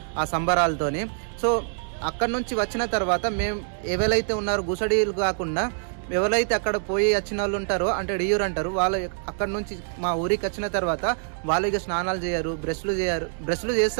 ఆ సంబరాలతోని. సో అక్కడ నుంచి వచ్చిన తర్వాత మేము ఎవరైతే ఉన్నారో గుసడీలు కాకుండా ఎవరైతే అక్కడ పోయి వచ్చిన వాళ్ళు ఉంటారో అంటే డియూర్ అంటారు, వాళ్ళు అక్కడ నుంచి మా ఊరికి వచ్చిన తర్వాత వాళ్ళు ఇక స్నానాలు చేయరు, బ్రష్లు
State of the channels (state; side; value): silent; left; digital silence